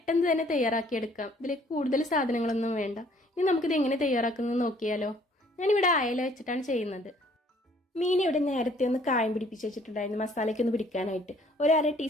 തന്നെ തയ്യാറാക്കിയെടുക്കാം. ഇതിലേക്ക് കൂടുതൽ സാധനങ്ങളൊന്നും വേണ്ട. ഇനി നമുക്കിത് എങ്ങനെ തയ്യാറാക്കുന്നത് നോക്കിയാലോ. ഞാനിവിടെ അയല വെച്ചിട്ടാണ് ചെയ്യുന്നത്. മീൻ ഇവിടെ നേരത്തെ ഒന്ന് കായം പിടിപ്പിച്ച് വെച്ചിട്ടുണ്ടായിരുന്നു മസാലയ്ക്ക് ഒന്ന് പിടിക്കാനായിട്ട്. ഒരു അര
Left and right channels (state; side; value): normal; both; correlation 0.60